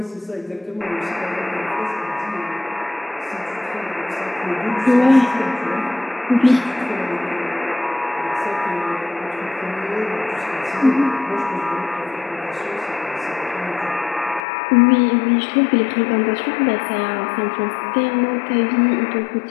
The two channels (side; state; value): right; drops out; at 14.5 s